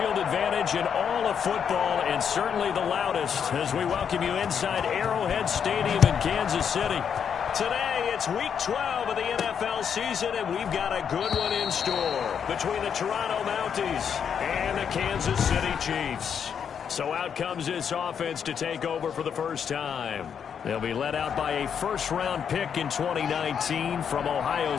advantage in all of football, and certainly the loudest, as we welcome you inside Arrowhead Stadium in Kansas City. Today, it's Week 12 of the NFL season, and we've got a good one in store between the Toronto Mounties and the Kansas City Chiefs. So out comes this offense to take over for the first time. They'll be led out by a first-round pick in 2019 from Ohio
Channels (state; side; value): quieter; right; 7.6 dB